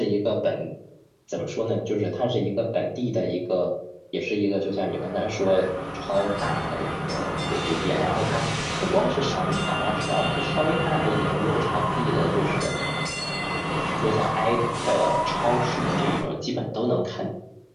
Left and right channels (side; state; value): both; identical; correlation 1.00